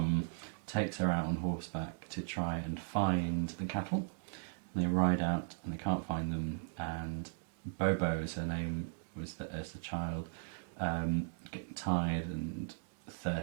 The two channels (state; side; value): silent; left; digital silence